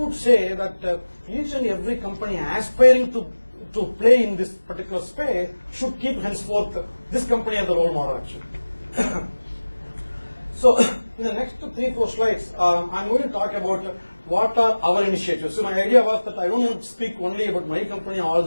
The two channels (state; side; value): inverted; both; correlation -1.00